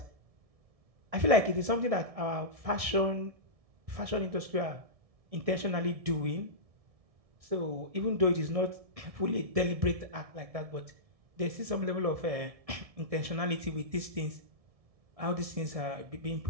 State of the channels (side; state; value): left; late; 1.6 ms